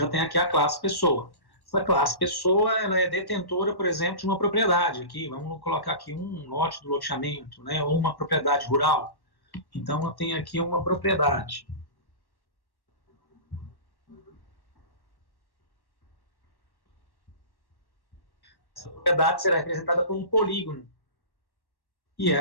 tem aqui a classe pessoa. Essa classe pessoa, ela é detentora, por exemplo, de uma propriedade aqui. Vamos colocar aqui um lote do loteamento, né, ou uma propriedade rural. Então, eu tenho aqui uma propriedade. Essa propriedade será representada por um polígono. E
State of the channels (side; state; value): right; late; 1.1 ms